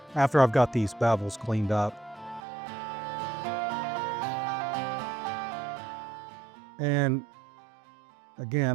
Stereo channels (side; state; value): left; drops out; at 2.4 s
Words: got these bevels cleaned up. And